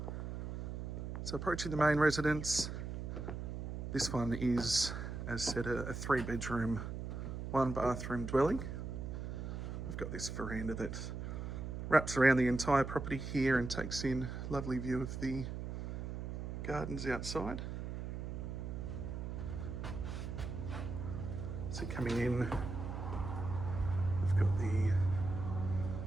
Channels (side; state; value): right; noise; hum, 5 dB below the sound